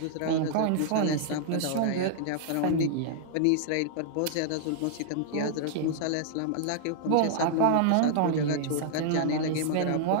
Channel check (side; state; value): both; different; correlation -0.01